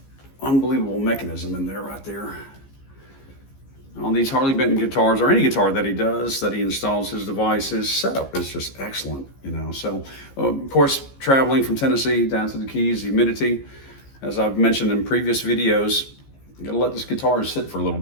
unbelievable mechanism in there right there on these Harley Benton guitars, or any guitar that he does, that he installs his device, his setup is just excellent, you know. So, of course, traveling from Tennessee down to the Keys, the humidity, as I've mentioned in previous videos, you gotta let this guitar sit for a little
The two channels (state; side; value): late; right; 15 ms